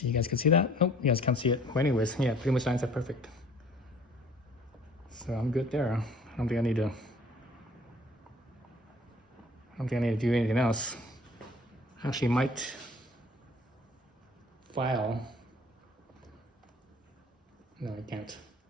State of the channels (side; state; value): both; normal; correlation 0.53